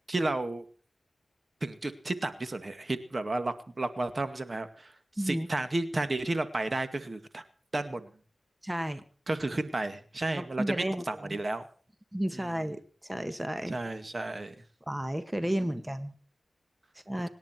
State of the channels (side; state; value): both; normal; correlation 0.98